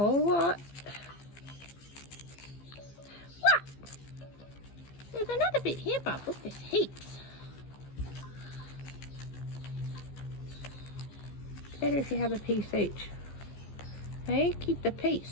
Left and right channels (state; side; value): late; right; 15 ms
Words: lot. What? There's another bit here, Bob. Look, there's heaps. Better if you have a piece each. Hey, keep the